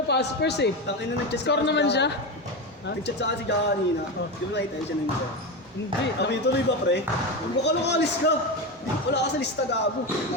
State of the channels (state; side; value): normal; both; correlation 0.17